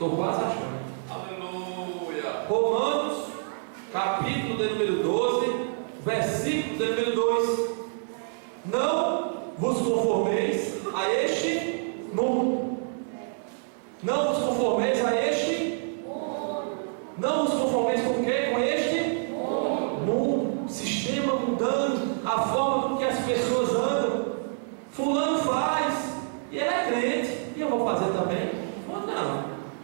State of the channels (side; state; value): left; silent; digital silence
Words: quase achando. Aleluia. Romanos, capítulo de número 12, versículo de número 2. Não vos conformeis a este mundo. Não vos conformeis a este mundo. Não vos conformeis com o quê? Com este mundo. Sistema mudando, a forma com que as pessoas andam. Fulano faz, e ele é crente, e eu vou fazer também? Ou não?